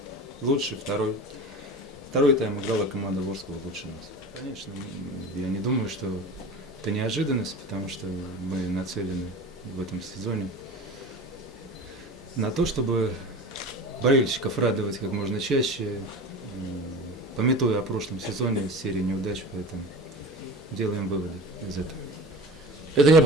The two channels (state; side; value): normal; both; correlation 0.35